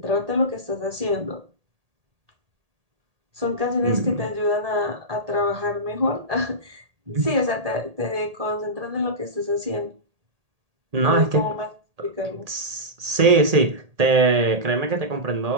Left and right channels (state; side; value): late; left; 1.8 ms